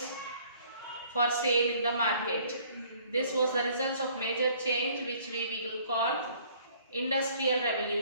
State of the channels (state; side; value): inverted; both; correlation -0.58